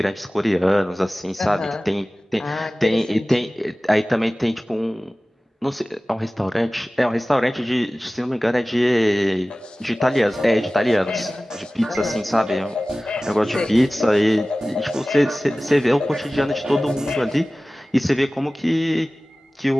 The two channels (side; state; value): both; normal; correlation 0.97